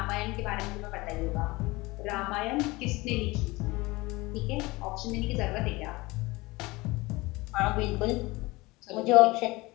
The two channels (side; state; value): right; quieter; 22.1 dB